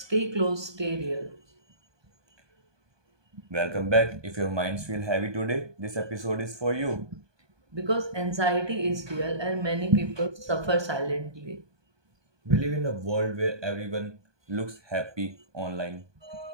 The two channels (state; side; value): late; left; 1.2 ms